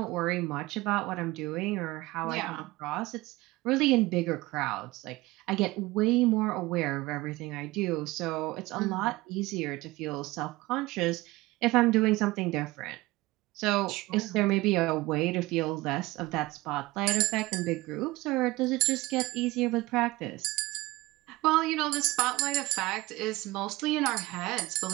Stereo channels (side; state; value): left; quieter; 20.2 dB